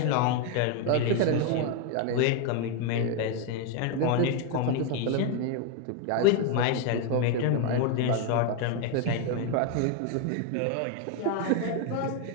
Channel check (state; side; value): different; both; correlation 0.01